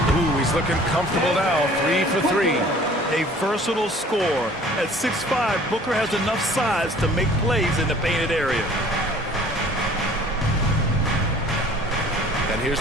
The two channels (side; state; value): both; normal; correlation 0.51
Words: Ooh, he's looking comfortable now. 3 for 3. A versatile scorer. At 6'5", Booker has enough size to make plays in the painted area. And here's